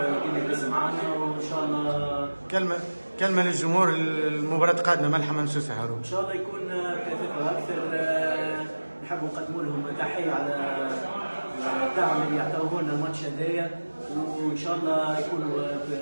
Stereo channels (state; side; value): inverted; both; correlation -1.00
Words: كما يدز معنا، وان شاء الله كلمه للجمهور، المباراه قادمه ملحة ممسوسه هارون. ان شاء الله يكون كثافه اكثر. نحب نقدموا لهم تحيه على الدعم اللي يعطوه لنا الماتش هذايا، وان شاء الله يكونوا